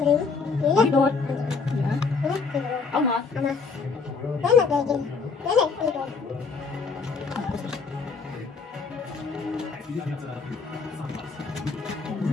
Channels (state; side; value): quieter; right; 4.8 dB